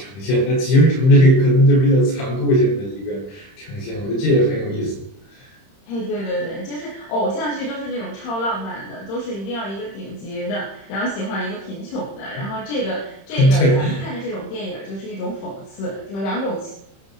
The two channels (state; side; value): late; right; 31 ms